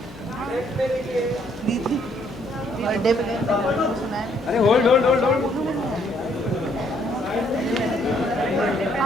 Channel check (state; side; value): normal; both; correlation 0.68